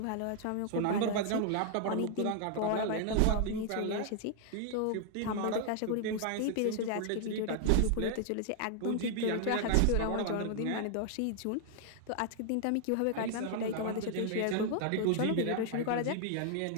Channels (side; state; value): both; different; correlation 0.00